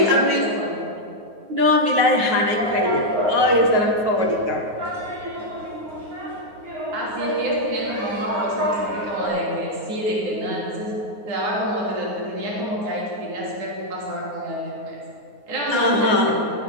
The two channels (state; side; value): late; left; 9.5 ms